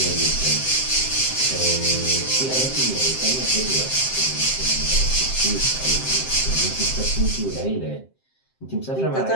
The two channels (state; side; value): late; right; 7.6 ms